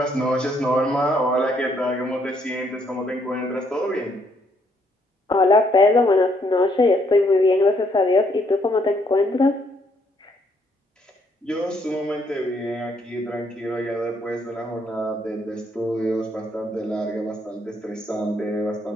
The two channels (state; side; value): normal; both; correlation 0.71